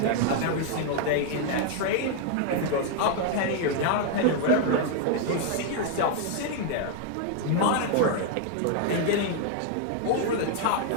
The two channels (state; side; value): different; both; correlation 0.00